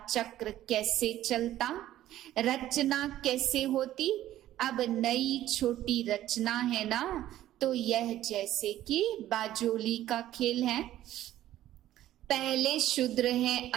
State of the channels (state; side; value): quieter; left; 13.4 dB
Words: चक्र कैसे चलता, रचना कैसे होती। अब नई छोटी रचना है ना, तो यह जैसे कि बाजोली का खेल है। पहले शूद्र हैं